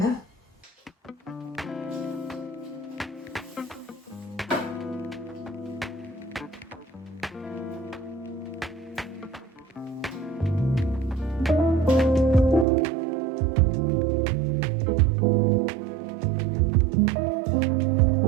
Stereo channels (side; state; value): left; drops out; at 12.7 s